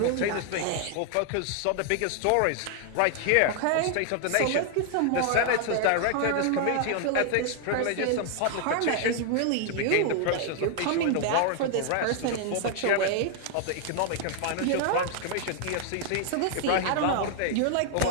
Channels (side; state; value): both; different; correlation 0.00